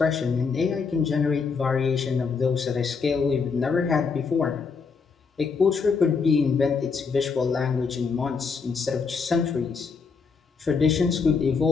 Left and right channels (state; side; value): quieter; right; 5.2 dB